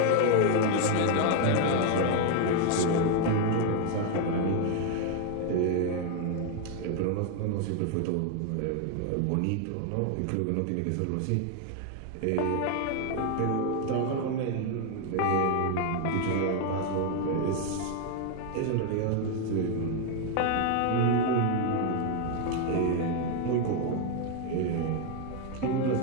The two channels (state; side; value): different; both; correlation 0.00